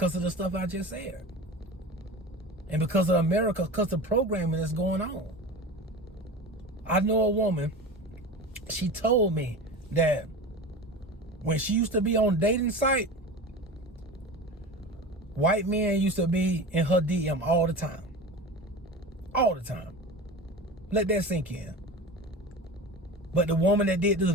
of the stuff I just said. And because of America, because the programming is going on. I know a woman, she told me that when she used to be on dating site, white men used to be in her DM all the time. All the time. Let that sink in. But the woman that did this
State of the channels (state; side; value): normal; both; correlation 0.31